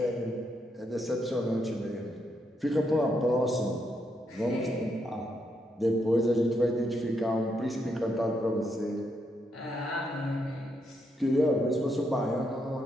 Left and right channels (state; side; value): normal; both; correlation 0.79